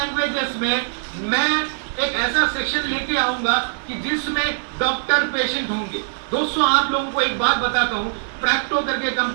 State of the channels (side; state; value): left; silent; digital silence